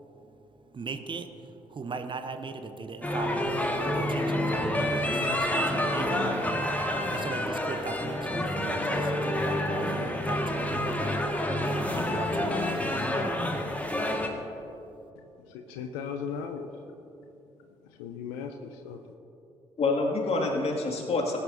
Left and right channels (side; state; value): both; normal; correlation 0.65